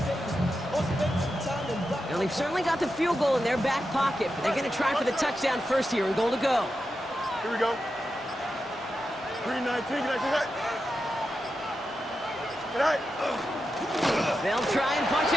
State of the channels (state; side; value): normal; both; correlation 0.89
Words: They've certainly got the field goal in their back pocket, but they're going to try for the touchdown first here and goal to go. Here we go. 3-19, They'll try and punch